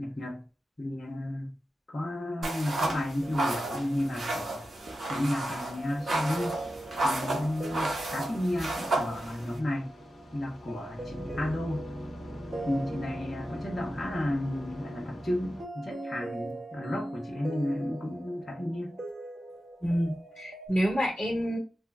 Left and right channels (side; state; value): both; normal; correlation 0.92